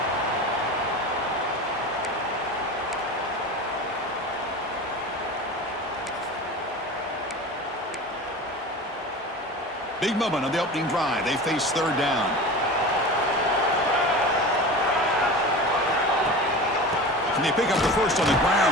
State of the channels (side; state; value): both; normal; correlation 0.32